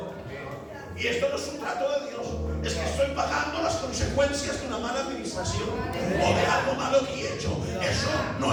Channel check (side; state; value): both; identical; correlation 1.00